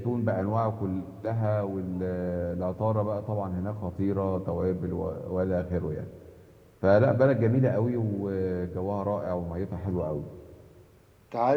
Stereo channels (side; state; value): both; identical; correlation 1.00